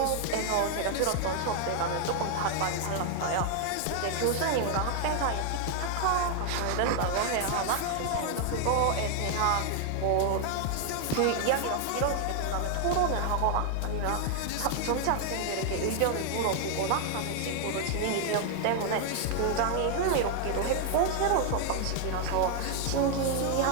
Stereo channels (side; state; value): both; different; correlation 0.00